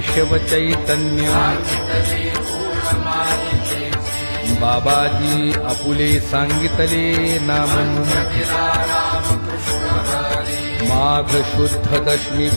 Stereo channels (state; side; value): inverted; both; correlation -1.00